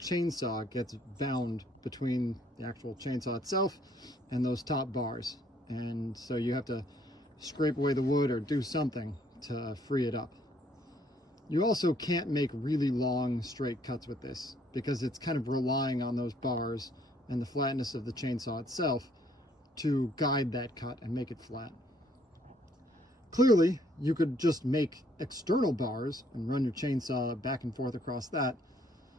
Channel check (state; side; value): normal; both; correlation 0.65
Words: gets bound between the actual chainsaw itself and those top bars. And so you have to scrape away the wood or do something to free it up. You also can't make really long straight cuts with this because it's kind of relying on those bars and the flatness of the chainsaw itself to guide that cut and make it flat. Clearly, you could just make external bars and run your chainsaw back and forth across that,